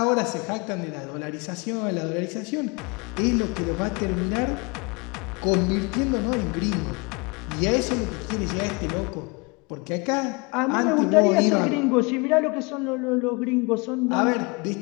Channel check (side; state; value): right; quieter; 29.3 dB